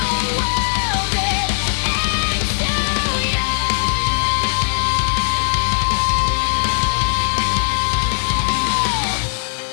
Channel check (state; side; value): silent; right; digital silence